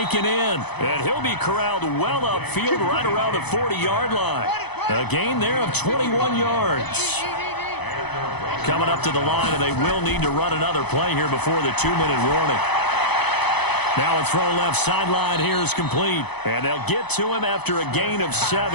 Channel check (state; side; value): late; right; 0.99 ms